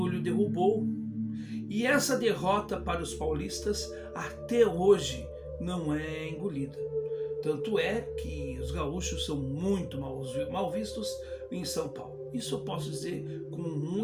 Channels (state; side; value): identical; both; correlation 1.00